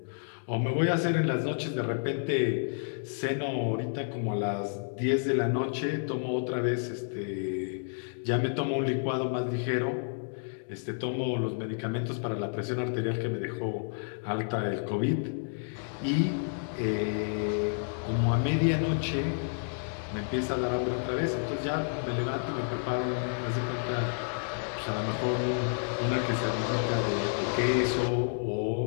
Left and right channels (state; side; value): silent; right; digital silence